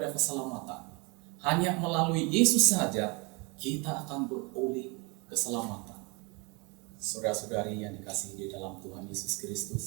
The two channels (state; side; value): quieter; left; 29.2 dB